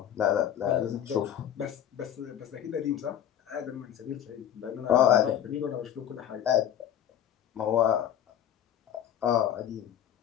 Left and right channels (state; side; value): quieter; right; 10.3 dB